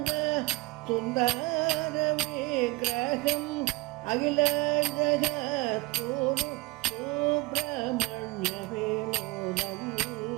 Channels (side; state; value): left; quieter; 22.9 dB